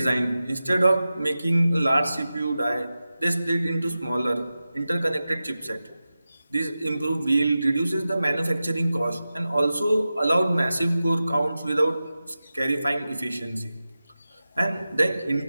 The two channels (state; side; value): inverted; both; correlation -0.94